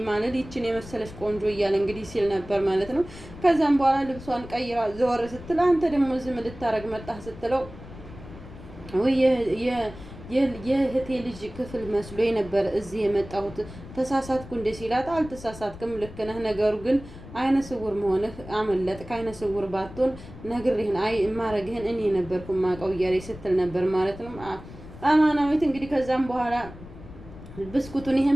ማለት ይችን የመሰለች ቆንጆ እያለ እንግዲህ ሲል ነበር ማለት ነው። ከዛም በኋላ ልብሷን ቀይራ ዘወር ስትል አንተ ደግሞ ዝም ልታረግ መጣህ ስትለው ወይ የእህቴ ልጅ ክፍል መስሎ ነበር እዚህ የመጣሁት ተሳሳትኩ እንደ ሲላት፣ አልተሳሳትክም፣ ልክ ነህ። ነገሩ ግን አይነ ስውር መሆንህ አመለጥክ። አይነ ስውር ባትሆን ነግሬህን ማረግህን እኔ ነበርኩ ማቀው እያለች ስትል ነበር ማለት ነው አማናዊት። እንግዲህ ከዛም በኋላ ብስኩቱን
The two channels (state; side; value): noise; left; rumble, 15 dB below the sound